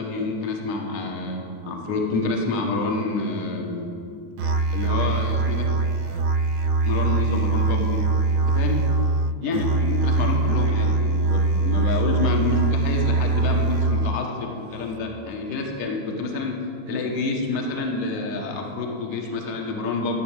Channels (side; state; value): left; late; 29 ms